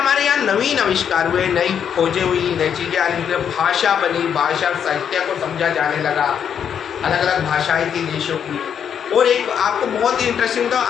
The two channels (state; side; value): quieter; right; 8.2 dB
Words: यहाँ नवीन आविष्कार हुए, नई खोजें हुई, नई चीज़ें आने लगी, भाषा बनी, भाषा साहित्य को समझा जाने लगा, अलग अलग भाषाएं थी देशों की। और एक आपको बहुत ही इंटरेस्टिंग था,